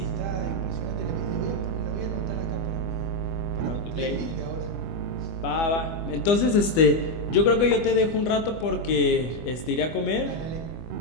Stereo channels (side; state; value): right; late; 25 ms